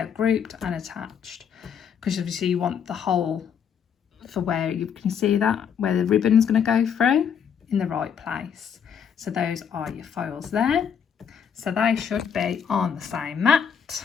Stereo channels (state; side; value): quieter; right; 7.6 dB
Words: grouped and attached because obviously you want the hole for where you can see that, where the ribbon's going to go through in the right place. So those are your files there. So they should be on the same mat,